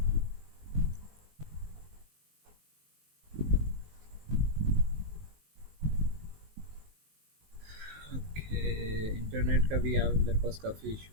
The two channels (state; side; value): late; left; 19 ms